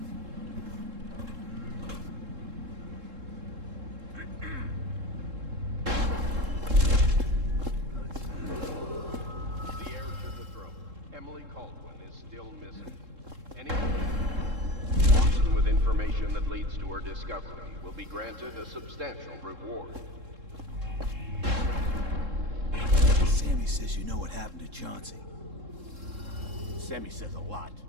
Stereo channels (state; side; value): late; left; 3.7 ms